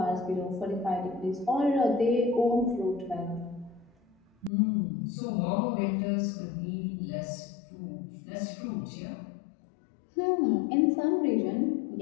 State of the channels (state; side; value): drops out; right; at 4.5 s